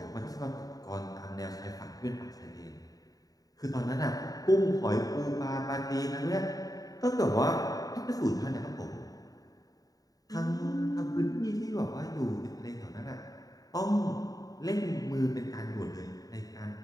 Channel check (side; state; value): right; late; 0.18 ms